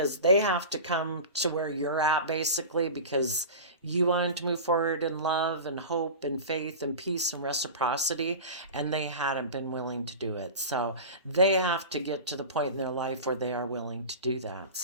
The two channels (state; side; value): inverted; both; correlation -0.31